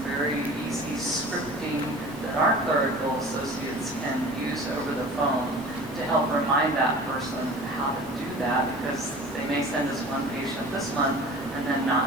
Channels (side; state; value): left; noise; rumble, 22 dB below the sound